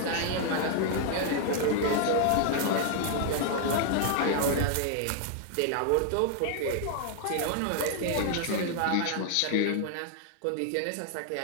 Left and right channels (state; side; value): different; both; correlation 0.00